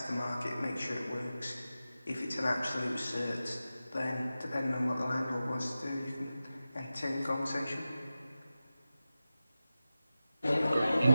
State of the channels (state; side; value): inverted; both; correlation -0.94